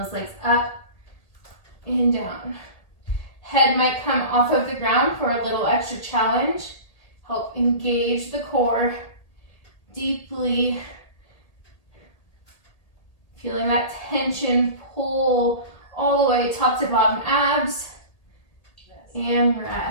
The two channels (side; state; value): right; late; 1.8 ms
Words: legs up and down. Head might come off of the ground for a little extra challenge. Help engage the core deeply. Feeling that tension pull all the way top to bottom abs. And